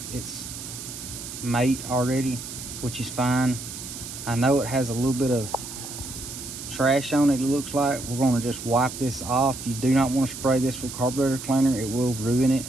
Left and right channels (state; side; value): noise; right; hiss, 10 dB below the sound